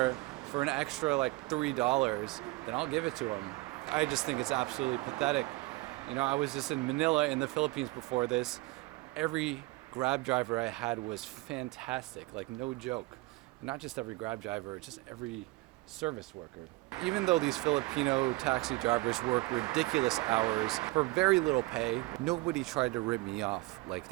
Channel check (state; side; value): quieter; left; 21.9 dB